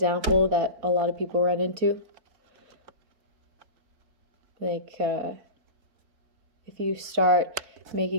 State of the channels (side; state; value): left; late; 4.6 ms